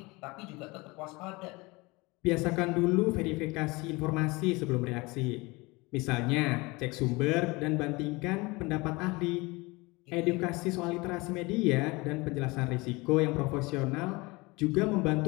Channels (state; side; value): quieter; right; 24.3 dB